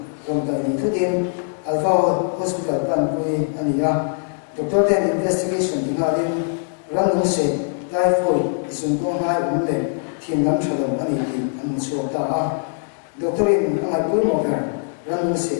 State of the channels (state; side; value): silent; right; digital silence